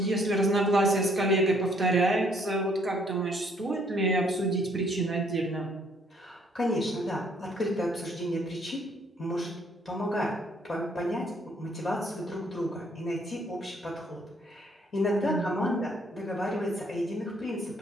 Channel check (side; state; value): both; normal; correlation 0.65